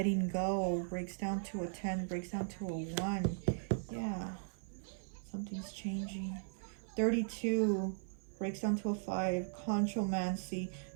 go, breaks down to a 10, breaks down to a 1. Yeah, something's changing. 32 breaks down to a 5, Conchomancy,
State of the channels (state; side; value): silent; left; 52 dB below the other